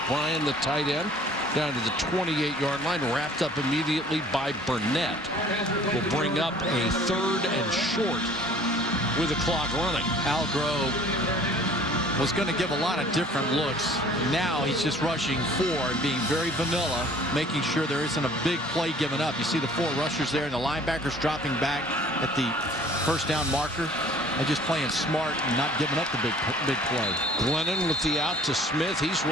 Bryan, the tight end, down to the 28-yard line, wrapped up immediately by Burnett. Will bring up a 3rd and short with the clock running. Algrove was going to give a lot of different looks. Now he's just rushing 4 and being very vanilla, making sure there isn't a big play given up. You see the 4 rushers there and the linebackers dropping back at the first down marker. They're just playing smart and not giving up the big play. Glennon with the out to Smith. He's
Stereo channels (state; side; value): normal; both; correlation 0.52